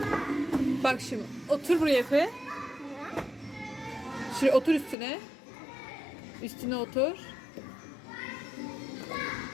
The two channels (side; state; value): right; drops out; at 5.0 s